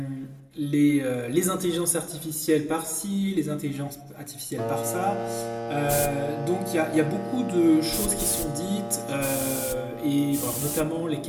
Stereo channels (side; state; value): both; identical; correlation 1.00